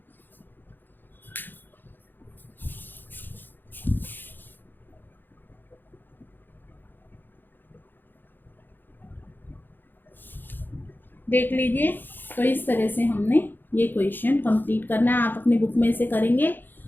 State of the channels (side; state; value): right; late; 0.092 ms